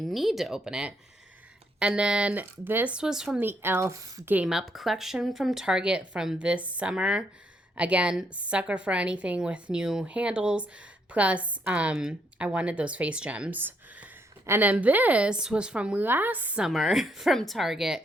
to open it. And then this was from the Elf Game Up collection from Target from this summer. Again, sucker for anything with new handles. Plus, I wanted those face gems. And then this was from last summer from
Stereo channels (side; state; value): both; normal; correlation 0.73